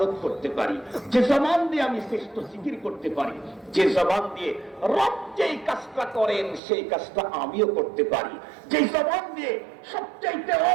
করতে পারি, যে জবান দিয়ে আমি শ্রেষ্ঠ জিকির করতে পারি, যে জবান দিয়ে রব যেই কাজটা করেন সেই কাজটা আমিও করতে পারি, যে জবান দিয়ে সবচাইতে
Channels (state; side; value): drops out; left; at 6.6 s